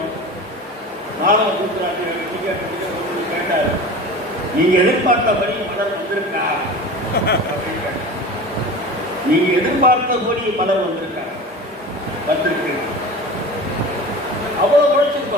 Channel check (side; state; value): both; normal; correlation 0.34